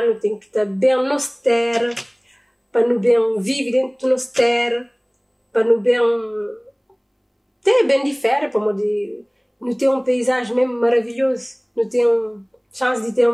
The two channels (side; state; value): both; identical; correlation 1.00